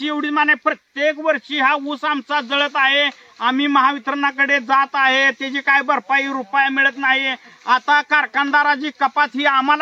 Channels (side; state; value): both; identical; correlation 1.00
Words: एवढी माने प्रत्येक वर्षी हा ऊस आमचा जळत आहे, आम्ही महावितरणाकडे जात आहे, त्याची काय भरपाई रुपया मिळत नाही। आता कारखानदाराची कपात ही